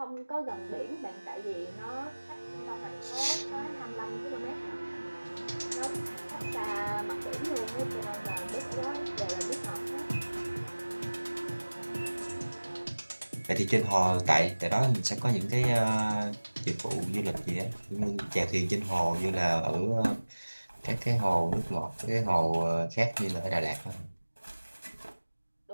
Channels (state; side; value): inverted; both; correlation -1.00